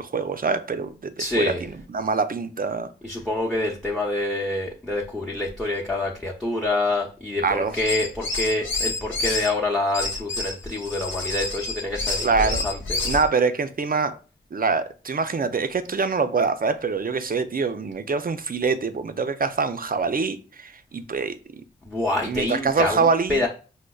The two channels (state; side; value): normal; both; correlation 0.21